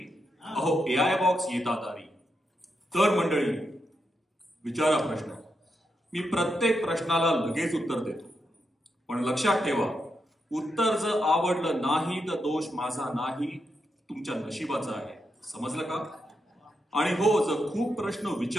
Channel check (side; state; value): both; normal; correlation 0.84